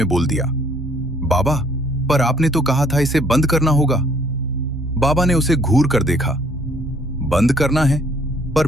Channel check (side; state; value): both; normal; correlation 0.62